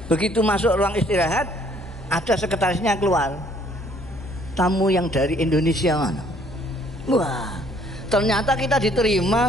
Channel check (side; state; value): both; normal; correlation 0.62